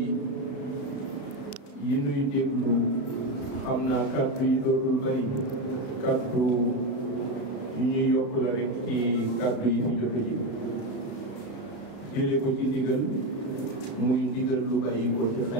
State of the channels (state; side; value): late; right; 34 ms